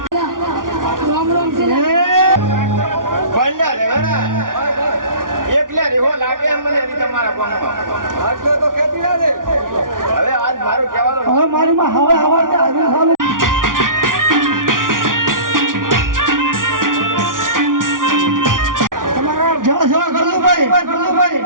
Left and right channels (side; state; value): left; late; 0.89 ms